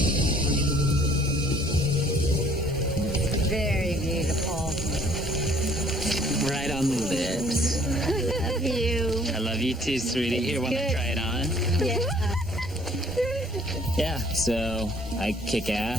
Very beautiful. Right on the lips. I love you. I love you too, sweetie. Here, want to Good. try it on? Yeah. Yeah, so I kick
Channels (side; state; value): both; normal; correlation 0.58